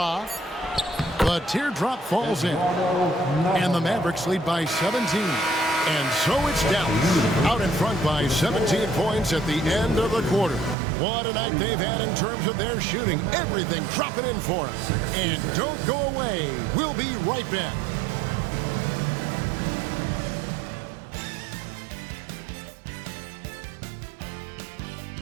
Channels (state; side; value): drops out; left; at 10.8 s